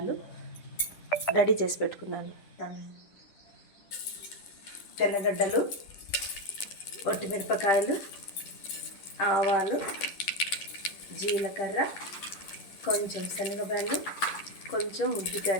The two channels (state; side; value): late; right; 10 ms